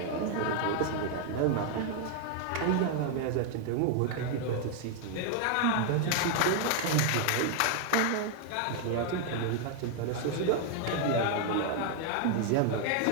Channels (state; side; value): different; both; correlation 0.00